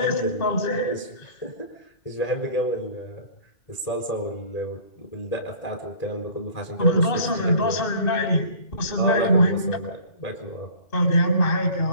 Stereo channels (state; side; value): late; right; 2.6 ms